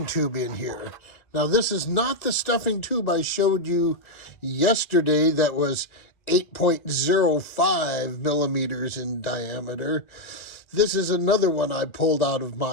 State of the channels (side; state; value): right; late; 2.0 ms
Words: tube in here. Now, this is not the stuffing tube I showed you yesterday that was 8.05 millimeters in diameter. This is another one I pulled out of